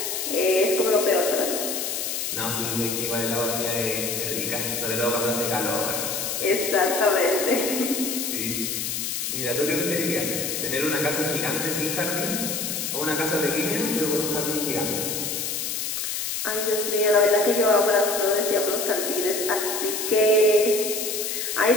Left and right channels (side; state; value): left; noise; hiss, 2 dB below the sound